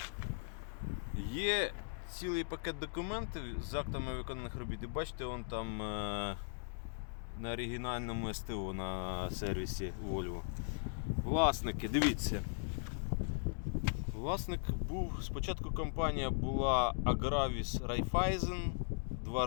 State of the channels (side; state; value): right; silent; digital silence